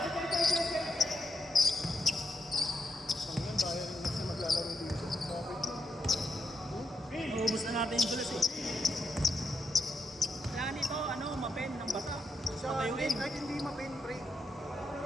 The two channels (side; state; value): both; normal; correlation 0.82